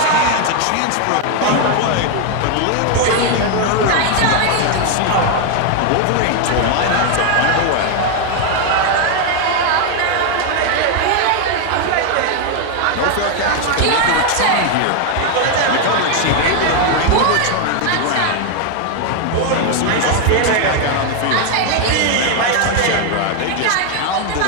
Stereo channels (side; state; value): both; different; correlation 0.01